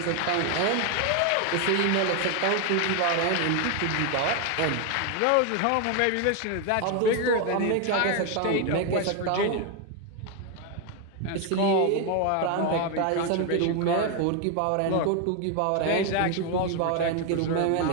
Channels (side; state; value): both; different; correlation 0.01